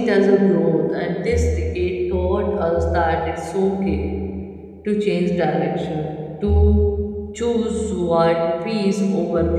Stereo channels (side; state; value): both; identical; correlation 1.00